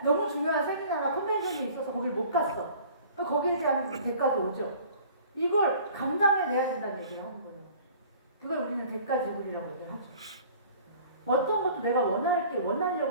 너무 중요한 세미나나 컨벤션이 있어서 거길 못 갔어. 거기에 대한 대가도 오죠. 이걸 감당해내야 된다는 얘기를 하는 거예요. 그걸 우리는 대가지불이라고 얘기를 하죠. 어떤 것도 내가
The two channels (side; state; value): both; inverted; correlation -0.48